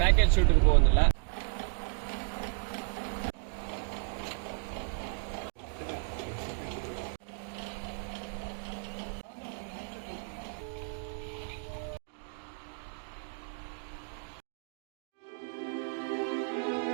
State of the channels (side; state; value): left; silent; digital silence